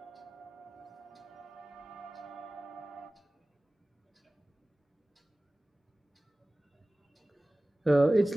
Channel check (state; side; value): normal; both; correlation 0.98